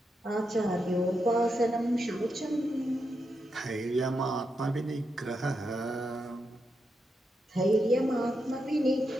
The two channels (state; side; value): normal; both; correlation 0.85